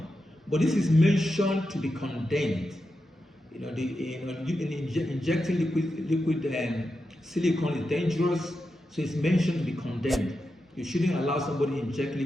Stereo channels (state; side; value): normal; both; correlation 0.88